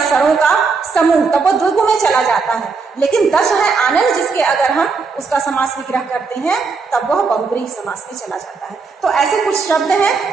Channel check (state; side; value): quieter; left; 4.7 dB